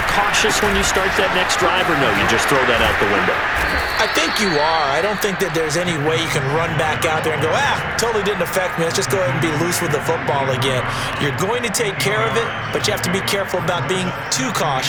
cautious when you start that next drive, or no, you just throw that out the window? I think you are. I don't think that there's any way you can run back out there and go, totally didn't affect me. Let's just go ahead and be loose with the football again. You're going to take care of it, but you have to be careful about being too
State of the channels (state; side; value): identical; both; correlation 1.00